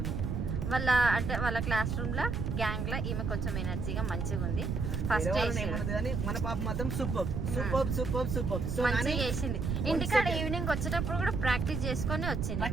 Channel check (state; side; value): noise; right; rumble, 1 dB below the sound